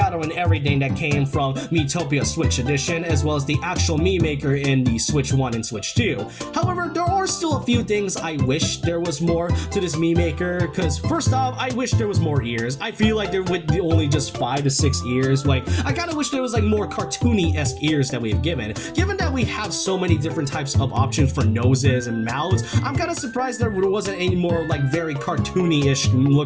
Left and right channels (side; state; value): both; identical; correlation 1.00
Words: everything that came from Miitopia Switch Edition, as well as the actual Mii Maker in the Switch 1 and Switch 2. However, there are still a few things I wish there was more to this Mii Maker, because first off, I wish there was more ears. I feel like there would be only just 5 to 6 ears. Like, I kind of wish there was like more cartoony-esque ears that we've given. Given that we have so many different types of options for noses and mouths, I'm kind of surprised there wasn't any more like very cartoony-ish